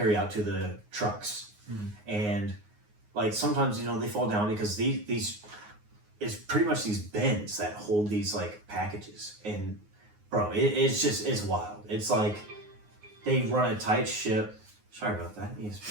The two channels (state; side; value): late; left; 9.6 ms